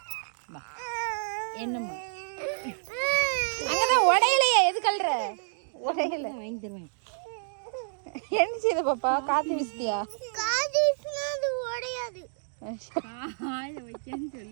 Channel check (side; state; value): left; silent; digital silence